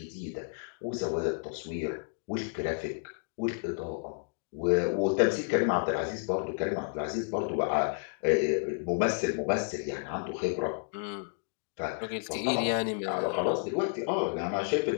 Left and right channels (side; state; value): right; silent; digital silence